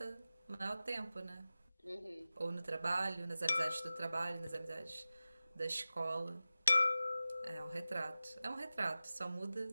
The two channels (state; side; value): inverted; both; correlation -0.95